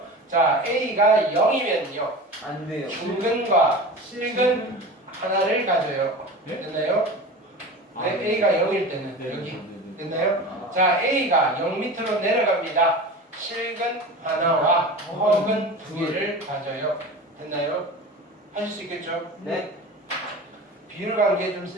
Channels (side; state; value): both; normal; correlation 0.33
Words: 자, A가 0이면요. 안 돼요. 중근과 실근 하나를 가져요. 네? 됐나요? 네, A가 0일 때는 여기. 됐나요? 자, A가 0 밑으로 내려갑니다. 실근 하나와 허근 두 개를 가져요. 됐나요? 하실 수 있겠죠? 네. 비율 관계 좀